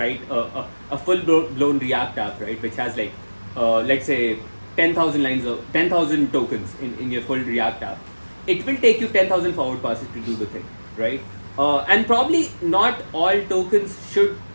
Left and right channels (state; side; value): inverted; both; correlation -1.00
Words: a full-blown React app, right, which has like let's say 10,000 lines of 10,000 tokens in your full React app, it will take you 10,000 forward passes to do the thing, right? And probably not all tokens should